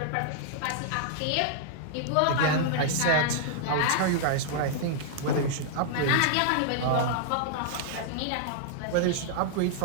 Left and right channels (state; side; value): different; both; correlation -0.01